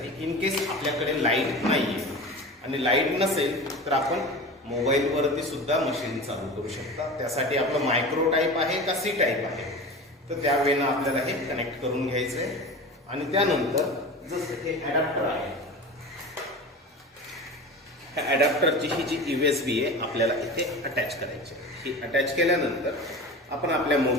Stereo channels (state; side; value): normal; both; correlation 0.32